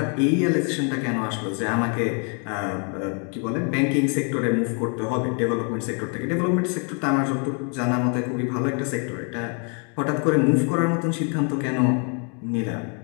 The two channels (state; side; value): quieter; right; 39.3 dB